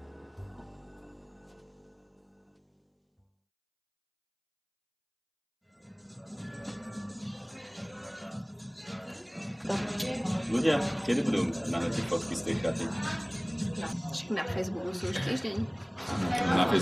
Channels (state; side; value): identical; both; correlation 1.00